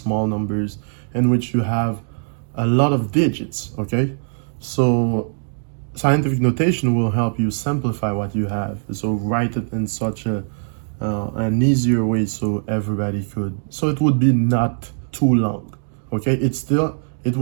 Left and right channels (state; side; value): silent; left; digital silence